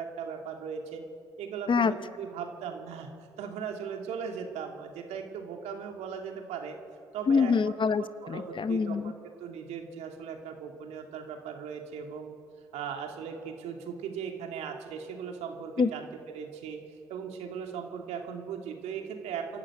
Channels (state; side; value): normal; both; correlation 0.60